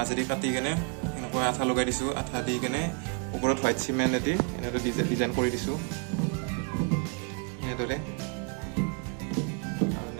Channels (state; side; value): quieter; left; 32.6 dB